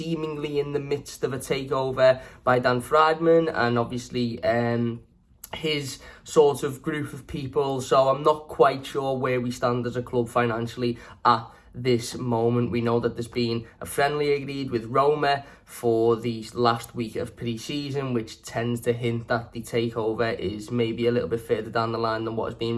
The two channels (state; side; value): identical; both; correlation 1.00